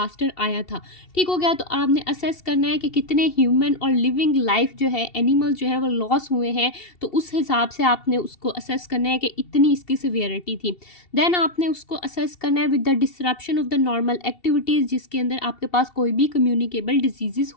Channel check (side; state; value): right; late; 2.7 ms